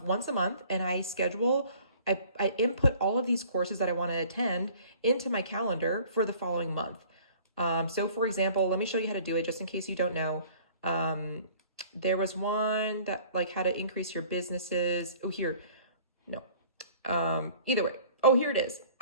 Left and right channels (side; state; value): both; inverted; correlation -0.52